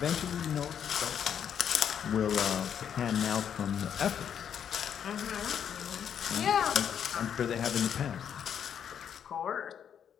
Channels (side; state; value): right; quieter; 8.5 dB